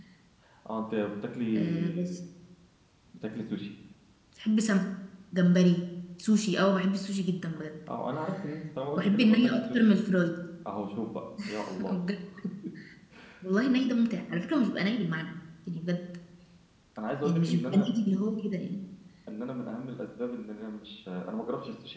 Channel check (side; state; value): both; identical; correlation 1.00